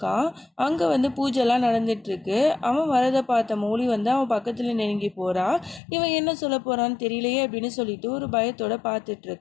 அங்கே வந்து பூஜைலாம் நடந்துகிட்ருக்கு. அவன் வரதை பார்த்த மௌலி வந்து அவன் பக்கத்தில் நெருங்கி போகிறான். இவன் என்ன சொல்ல போகிறான்னு தெரியலையே அப்படின்னு சொல்லிட்டு ஒரு பயத்தோடு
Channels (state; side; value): drops out; right; at 5.8 s